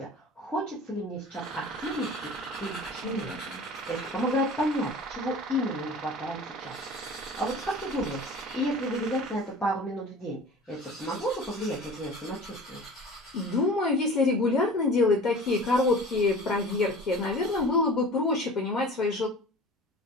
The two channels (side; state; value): both; normal; correlation 0.40